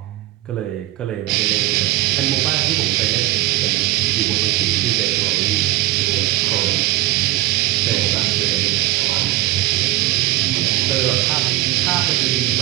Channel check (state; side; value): quieter; left; 17.0 dB